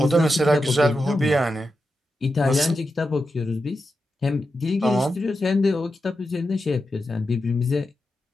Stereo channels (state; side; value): normal; both; correlation 0.89